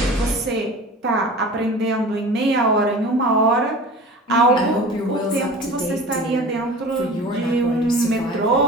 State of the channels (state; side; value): normal; both; correlation 0.39